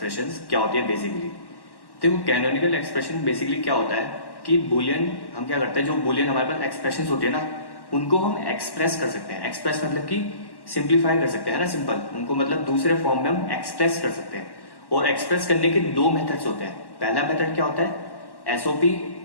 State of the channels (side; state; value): right; late; 1.1 ms